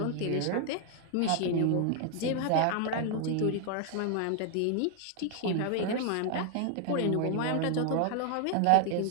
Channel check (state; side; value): different; both; correlation 0.00